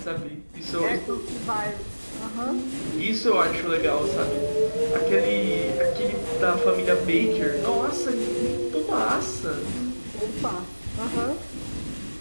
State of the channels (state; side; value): inverted; both; correlation -1.00